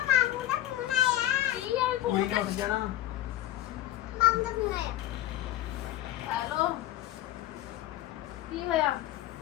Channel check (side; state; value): right; quieter; 14.3 dB